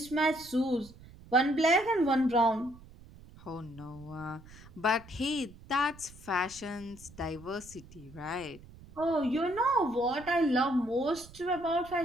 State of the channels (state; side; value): noise; right; rumble, 20 dB below the sound